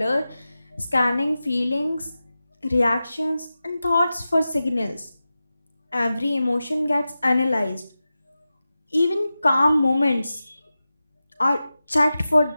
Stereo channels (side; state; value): both; inverted; correlation -0.94